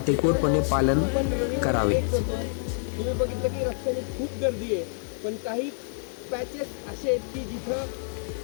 पालन करावे. तुम्ही बघितलं की रस्त्याने खूप गर्दी आहे, पण काही पॅचेस असे आहेत की जिथं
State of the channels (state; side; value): silent; right; digital silence